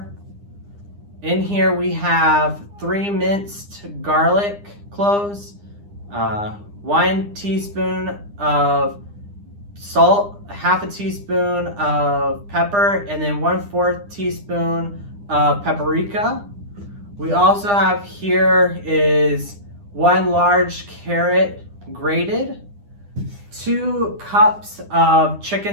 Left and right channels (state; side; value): late; left; 9.9 ms